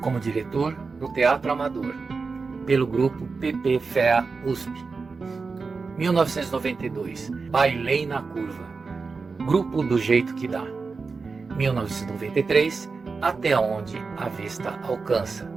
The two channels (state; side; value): quieter; left; 4.5 dB